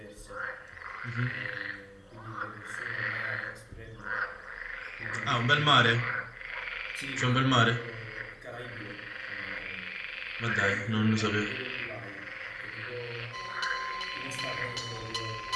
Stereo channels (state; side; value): identical; both; correlation 1.00